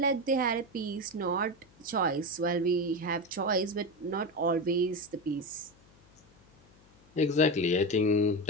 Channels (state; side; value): noise; left; hum, 29 dB below the sound